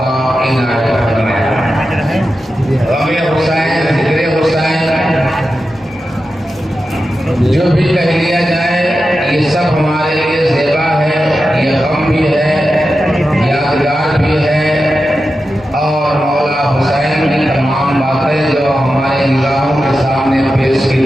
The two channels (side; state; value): both; normal; correlation 0.91